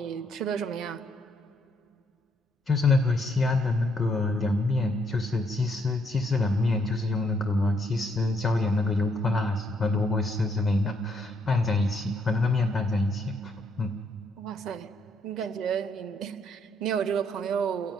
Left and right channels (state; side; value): normal; both; correlation 0.72